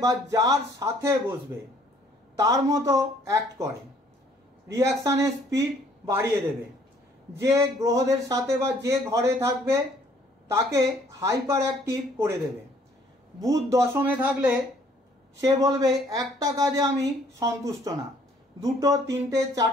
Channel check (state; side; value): normal; both; correlation 0.61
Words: বা যার সাথে বসবে তার মতো অ্যাক্ট করে, রিয়াকশানের স্পিড বাড়িয়ে দেবে। যে গ্রহদের সাথে বা যে ঘরে থাকবে তাকে হাইপার অ্যাক্টিভ করে দেবে। বুধ দশমে থাকলে সে বলবে একটা কাজে আমি সন্তুষ্ট না, দুটো, তিনটে,